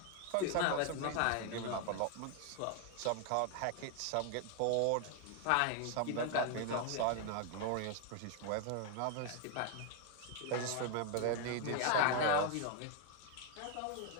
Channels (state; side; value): different; both; correlation 0.00